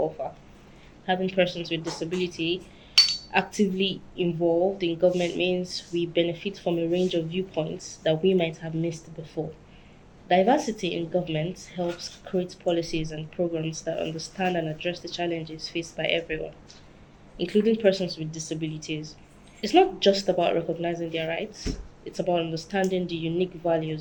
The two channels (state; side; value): identical; both; correlation 1.00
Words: Having persons with disability actively involved in government means we benefit from a range of viewpoints that we might have missed before. Diversity in government helps create policies and programs that understand and address the challenges faced by everyone, including persons with disabilities. It's not just about recognizing their rights, it's about understanding the unique